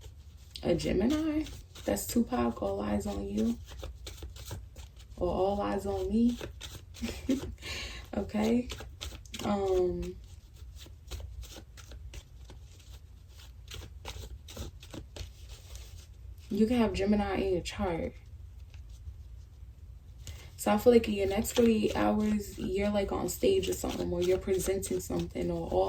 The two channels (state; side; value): identical; both; correlation 1.00